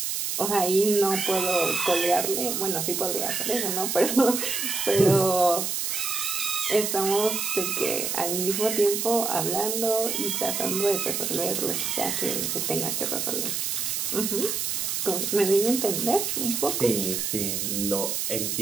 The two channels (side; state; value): right; noise; hiss, 1 dB below the sound